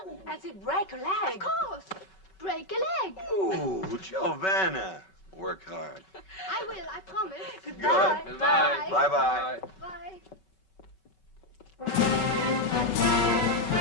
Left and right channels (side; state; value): right; late; 5.3 ms